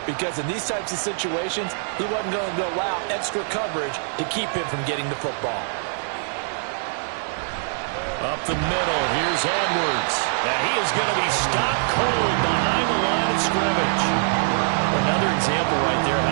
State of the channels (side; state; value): left; silent; digital silence